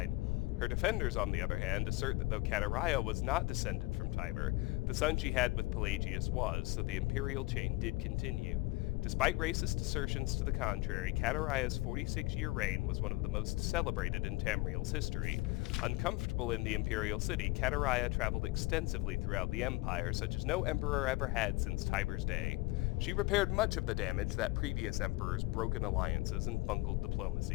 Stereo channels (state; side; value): quieter; right; 21.5 dB